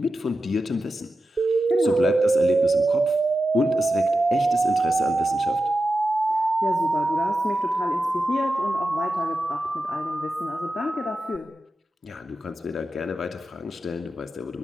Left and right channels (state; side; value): normal; both; correlation 0.91